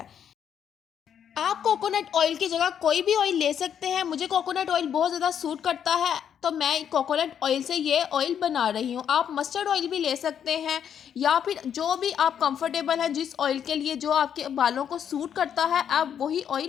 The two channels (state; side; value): quieter; right; 8.7 dB